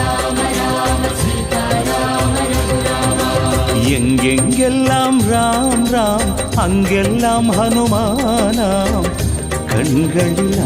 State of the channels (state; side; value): identical; both; correlation 1.00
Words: எங்கெங்கெல்லாம் ராம் ராம் அங்கெல்லாம் ஹனுமானாம், கண்களில்